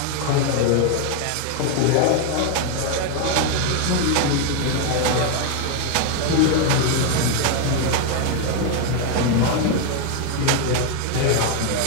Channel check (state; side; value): different; both; correlation 0.01